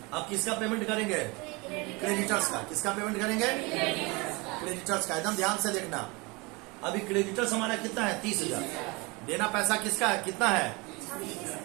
अब किसका पेमेंट करेंगे? क्रेडिटर्स का। किसका पेमेंट करेंगे? क्रेडिटर्स का। एकदम ध्यान से देखना। अभी क्रेडिटर्स हमारा कितना है? 30,000। देना पैसा किसका है? कितना है?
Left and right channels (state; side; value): quieter; left; 26.6 dB